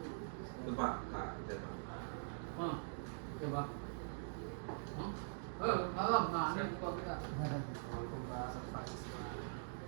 Itu Pak, Kak, Jatuh. Coba. Malam, nah ini kok kita.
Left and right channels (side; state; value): left; silent; digital silence